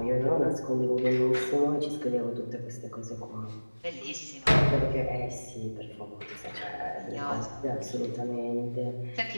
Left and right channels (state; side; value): inverted; both; correlation -1.00